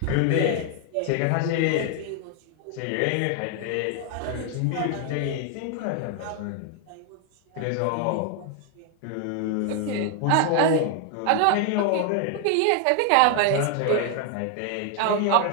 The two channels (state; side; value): different; both; correlation 0.00